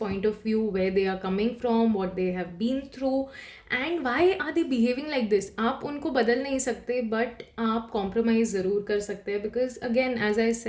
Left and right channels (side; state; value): both; identical; correlation 1.00